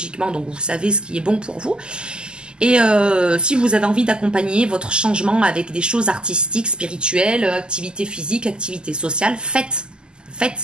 donc vous savez ce qui est bon pour vous. Et si vous avez envie d'accompagner votre changement avec des choses artistiques, spirituelles, activités physiques, activités sociales, faites.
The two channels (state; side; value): late; left; 0.047 ms